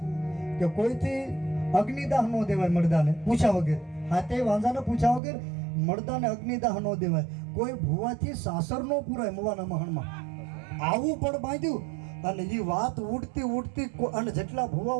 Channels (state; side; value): drops out; left; at 5.2 s